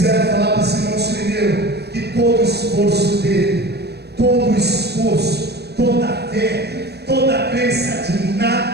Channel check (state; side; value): late; left; 0.48 ms